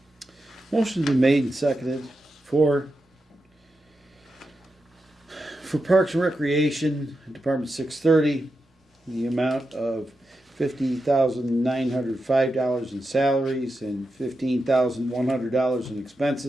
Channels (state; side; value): normal; both; correlation 0.88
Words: Motion's been made and seconded for Parks and Recreation, Department 630, the amount of $50,905 in salaries and $15,100 in